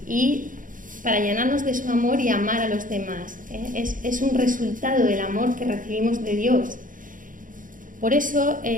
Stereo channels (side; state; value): left; late; 0.39 ms